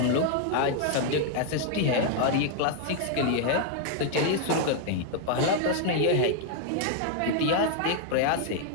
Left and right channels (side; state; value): both; different; correlation 0.00